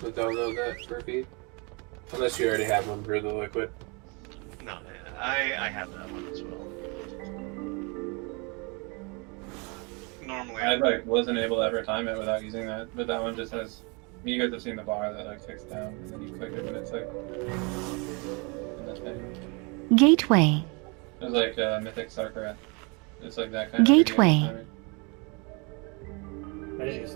to download that for feed. Unless you already have one for the liquid. no, I have that one as well. Normally, I like wasn't able to ever time it without using that, but that one just has. You guys have seen the bar that like ticks down, and then you click it when it's like. In the thing. Gateway. It was like Mythic Sarkarat. It's like that kind of. Gateway. I didn't use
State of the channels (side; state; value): left; quieter; 30.9 dB